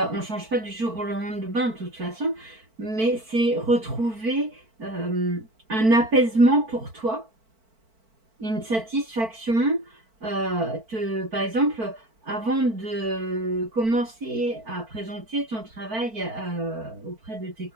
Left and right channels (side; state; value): left; late; 4.5 ms